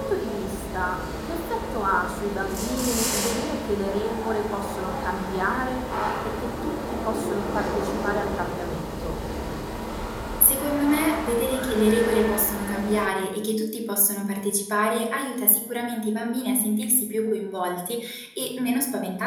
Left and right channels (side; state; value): both; identical; correlation 1.00